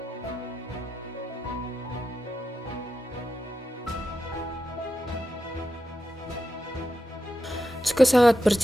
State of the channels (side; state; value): both; normal; correlation 0.88